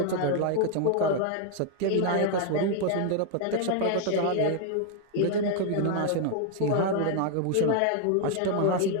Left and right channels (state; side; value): different; both; correlation 0.00